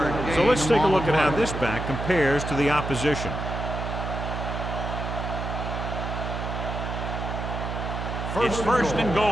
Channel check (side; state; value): right; noise; hum, 4 dB below the sound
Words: So let's take a look at how this back compares to the opposition. It's first and